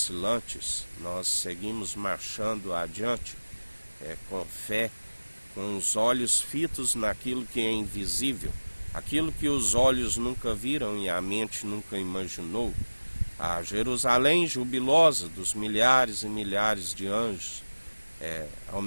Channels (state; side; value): inverted; both; correlation -1.00